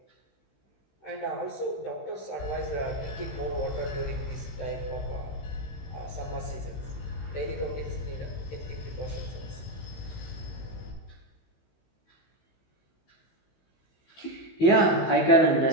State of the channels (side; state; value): right; late; 15 ms